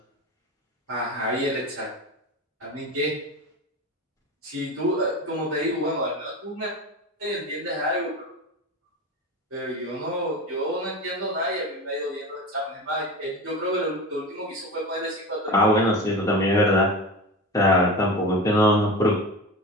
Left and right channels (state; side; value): normal; both; correlation 0.28